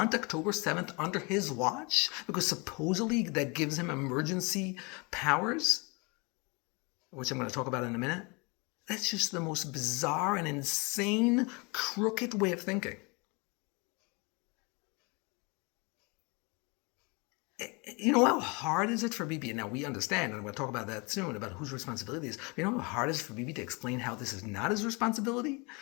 October 7th under his watch because supposedly that gives him emergency powers, which I'm going to talk about in a minute. That's just the most bizarre and insane, crooked way of thinking. You know how hard is it for Bibi? Now we understand, and we'll talk about that soon, about whose responsibility it is. You know how hard it is for Bibi to explain how this is not his responsibility?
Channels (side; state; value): right; quieter; 29.2 dB